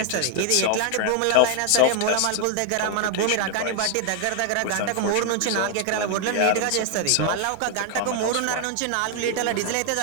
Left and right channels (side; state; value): both; different; correlation 0.00